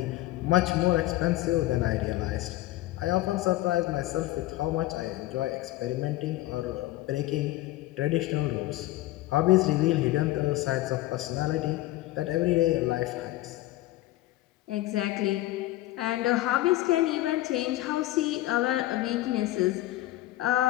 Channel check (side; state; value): right; quieter; 16.6 dB